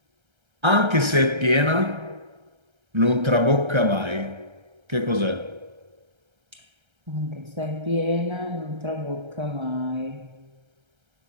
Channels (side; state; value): left; late; 1.3 ms